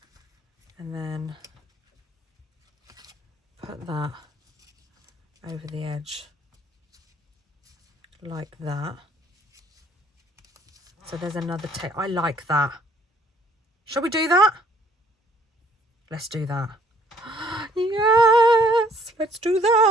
And then put that over the edge like that. So there's another tape. I like that. Shall we do that? Let's do that. Yes, let's do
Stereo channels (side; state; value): both; normal; correlation 0.62